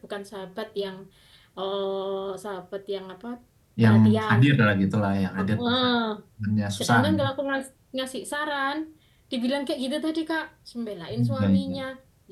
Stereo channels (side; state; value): both; identical; correlation 1.00